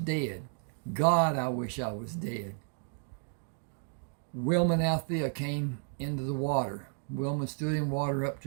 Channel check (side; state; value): left; silent; 56 dB below the other